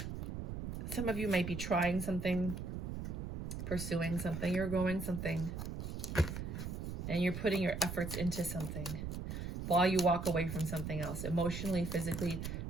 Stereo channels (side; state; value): right; noise; rumble, 5 dB below the sound